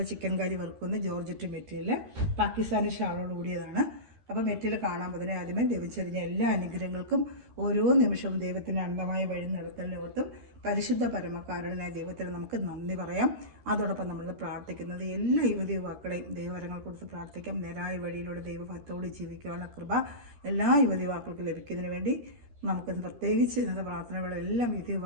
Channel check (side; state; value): left; late; 13 ms